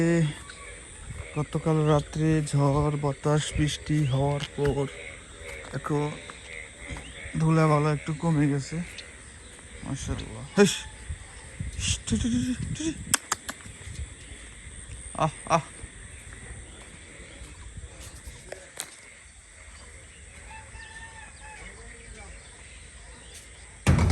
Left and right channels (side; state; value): both; identical; correlation 1.00